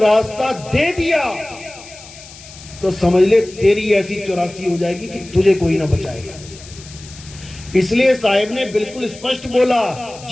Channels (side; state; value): left; noise; hiss, 18 dB below the sound